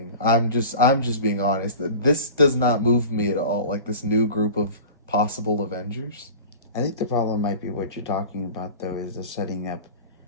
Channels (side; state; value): both; inverted; correlation -0.37